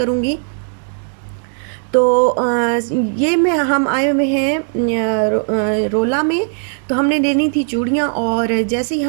तो ये में हम आए हुए हैं रोला में। तो हमने लेनी थी चूड़ियाँ और जैसे ही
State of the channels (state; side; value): silent; left; digital silence